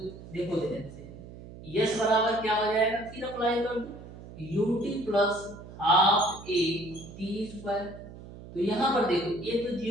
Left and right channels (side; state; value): right; noise; hum, 15 dB below the sound